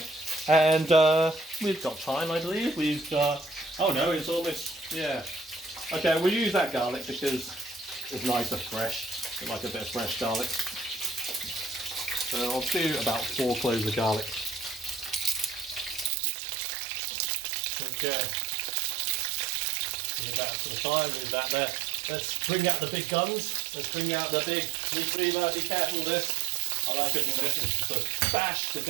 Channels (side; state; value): left; drops out; at 16.1 s